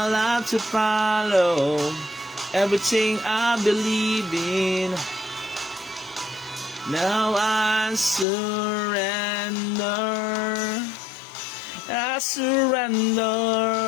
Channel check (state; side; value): drops out; right; at 8.2 s